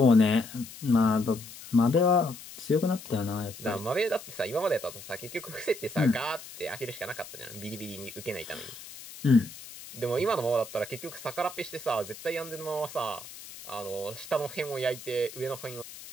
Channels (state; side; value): noise; left; hiss, 15 dB below the sound